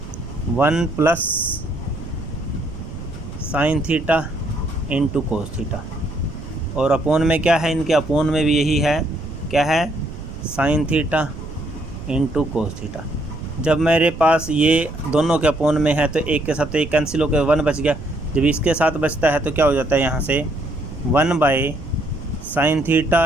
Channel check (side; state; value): right; noise; rumble, 11 dB below the sound